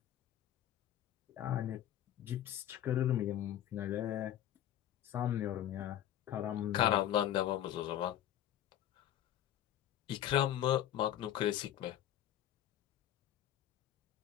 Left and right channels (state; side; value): quieter; right; 11.7 dB